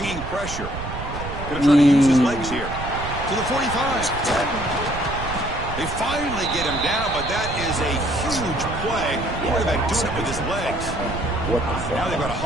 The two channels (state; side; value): noise; right; rumble, 8 dB below the sound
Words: pressure. Going to try to use his legs here. To the 45. They finally get him down, but that is a huge play. Quarterback doing it with his legs. What the fuck? Now they've got to